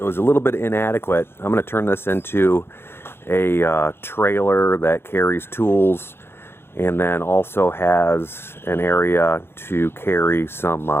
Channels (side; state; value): right; late; 0.11 ms